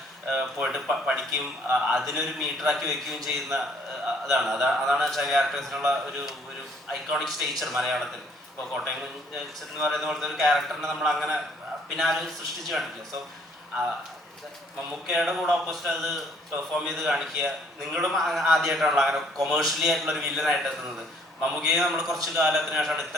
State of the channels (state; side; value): normal; both; correlation 0.63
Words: പോയിട്ട് പഠിക്കുകയും അതിനൊരു മീറ്ററാക്കി വെക്കുകയും ചെയ്യുന്ന അതാണ് അച്ചായ ക്യാരക്ടേഴ്സിനുള്ള ഒരു ഐക്കോണിക് സ്റ്റേച്ചർ മലയാളത്തിൽ. ഇപ്പോൾ കോട്ടയം എന്ന് പറയുന്ന പോലത്തെ ഒരു ക്യാരക്ടറിനെ നമ്മൾ അങ്ങനെ പിന്നെ ആരും സൃഷ്ടിച്ച് കാണിക്കില്ല. സോ മമ്മൂക്കയുടെ കൂടെ ഓപ്പോസിറ്റ് അത് പെർഫോം ചെയ്ത് കാണിക്കുക. നിങ്ങളും ആദ്യമായിട്ടാണല്ലോ അങ്ങനെ കൊമേഴ്ഷ്യലി ആയിട്ടുള്ള ഒരു വില്ലനായിട്ട് എത്തുന്നത്. മമ്മൂക്കയെ നമ്മൾ കുറച്ച് കാലത്തിന് ശേഷമാണ്